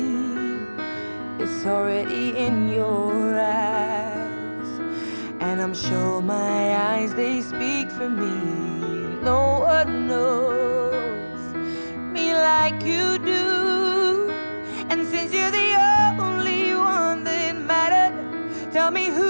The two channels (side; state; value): both; inverted; correlation -1.00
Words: it's already in your eyes, and I'm sure my eyes, they speak for me. No one knows me like you do, and since you're the only one that mattered, tell me,